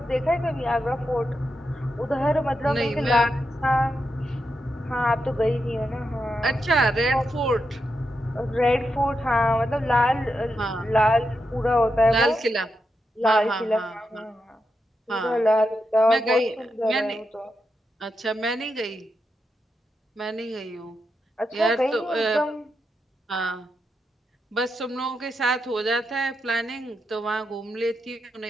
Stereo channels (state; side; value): normal; both; correlation 0.85